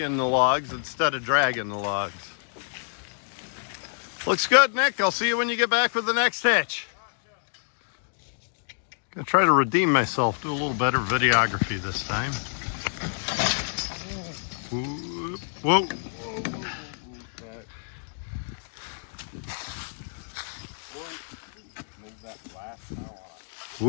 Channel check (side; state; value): right; silent; digital silence